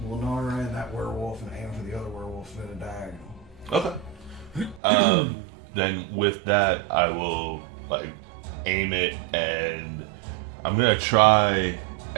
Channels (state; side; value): drops out; left; at 4.8 s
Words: Lenara and that werewolf and aim for the other werewolf in a diagonal. okay. Then with that, I will like aim it, and I'm gonna try